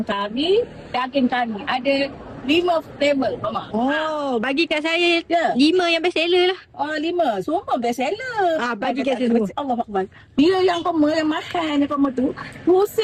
kari, daging kari. Ada 5 flavor, Mama. Oh, bagi kat saya Ya. 5 yang best seller lah. Oh, 5. Semua best seller. Bagi kat saya semua. Allah Akbar. Dia yang kamu yang makan yang kamu tu,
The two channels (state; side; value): identical; both; correlation 1.00